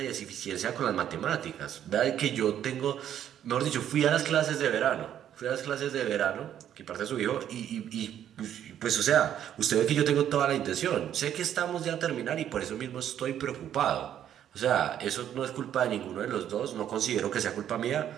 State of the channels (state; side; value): quieter; left; 10.3 dB